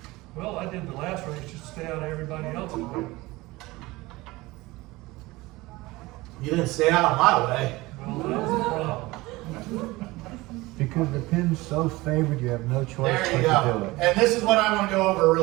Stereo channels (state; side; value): quieter; left; 20.7 dB